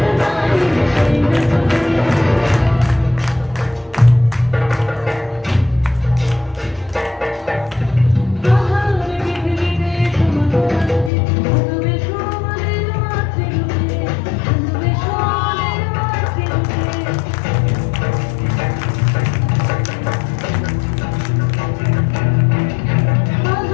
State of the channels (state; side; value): drops out; right; at 11.1 s